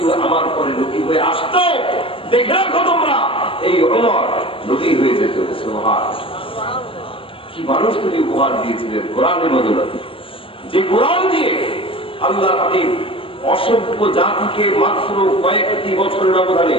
আমার পরে নবী হয়ে আসতো, দেখে রাখো তোমরা এই উমর নবী হয়ে যেত। সুবহানাল্লাহ। কি মানুষ তিনি উপহার দিয়েছিলেন কোরআনের বদৌলতে, যে কোরআন দিয়ে আল্লাহ হাবিব অসভ্য জাতিকে মাত্র কয়েকটি বছরের ব্যবধানে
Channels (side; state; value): right; late; 0.26 ms